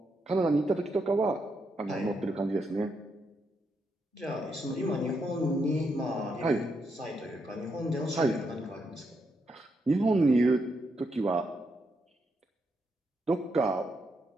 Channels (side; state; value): both; normal; correlation 0.80